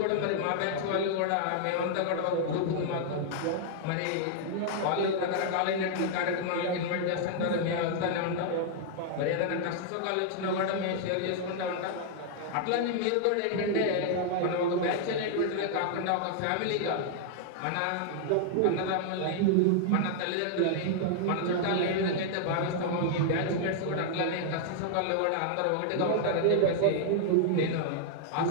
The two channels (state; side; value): different; both; correlation -0.01